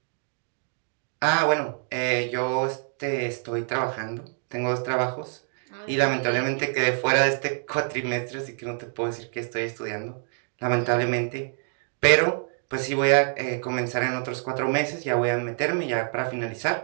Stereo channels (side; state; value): left; silent; 59 dB below the other